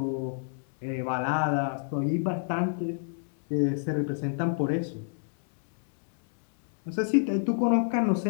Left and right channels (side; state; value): right; silent; 59 dB below the other